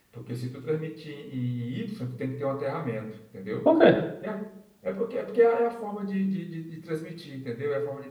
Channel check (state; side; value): identical; both; correlation 1.00